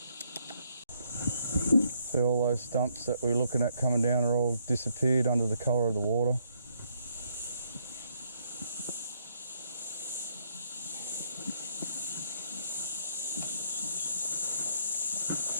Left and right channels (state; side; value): inverted; both; correlation -0.71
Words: See, all those stumps that we were looking at coming down are all disappeared under the colour of the water.